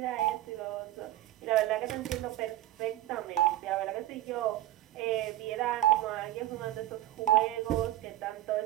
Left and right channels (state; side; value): quieter; left; 14.4 dB